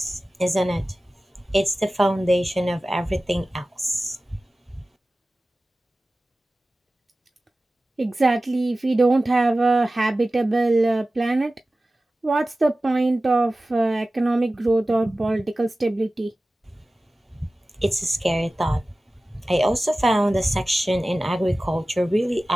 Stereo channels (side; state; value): both; normal; correlation 0.96